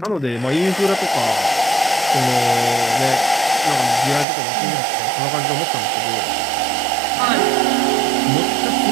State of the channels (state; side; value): drops out; left; at 4.2 s